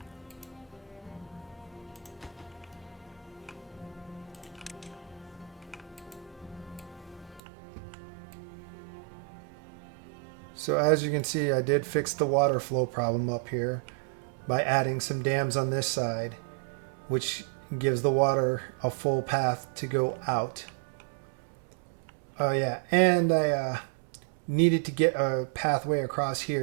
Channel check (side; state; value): left; drops out; at 7.4 s